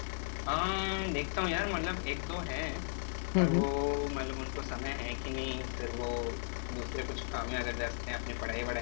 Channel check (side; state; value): right; silent; digital silence